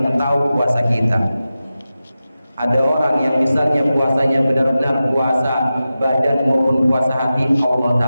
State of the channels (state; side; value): inverted; both; correlation -0.93